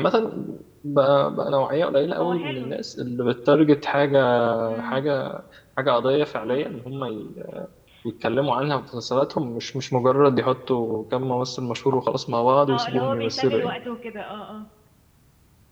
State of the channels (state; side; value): identical; both; correlation 1.00